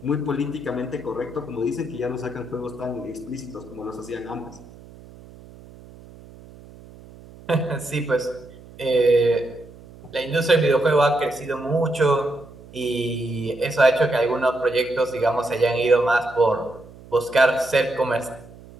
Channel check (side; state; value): right; noise; hum, 20 dB below the sound